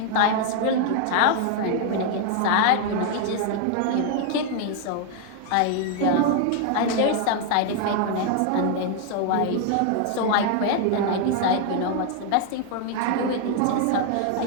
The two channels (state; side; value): different; both; correlation 0.00